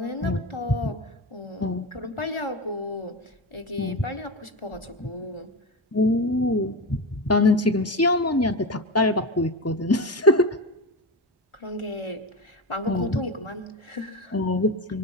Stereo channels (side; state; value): both; normal; correlation 0.21